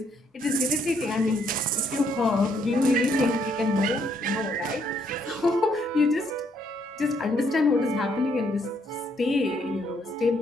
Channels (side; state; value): both; normal; correlation 0.71